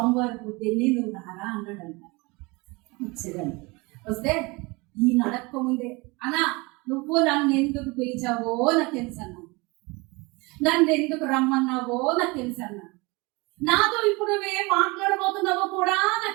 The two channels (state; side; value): quieter; left; 25.5 dB